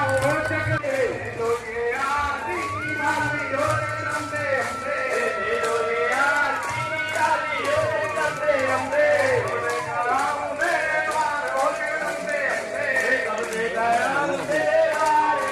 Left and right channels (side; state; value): both; identical; correlation 1.00